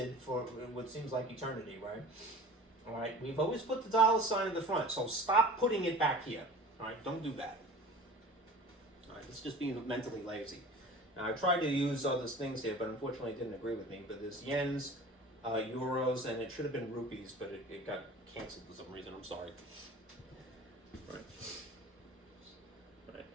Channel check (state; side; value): normal; both; correlation 0.40